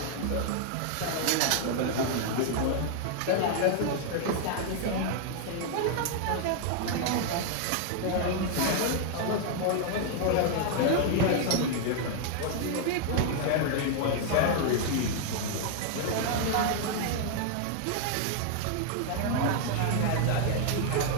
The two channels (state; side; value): different; both; correlation 0.00